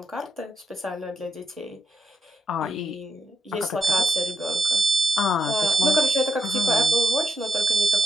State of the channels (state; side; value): normal; both; correlation 0.80